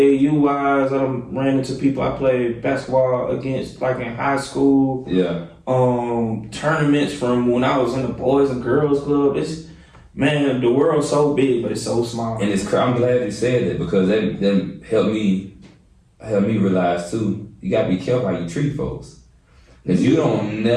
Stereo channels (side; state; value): both; identical; correlation 1.00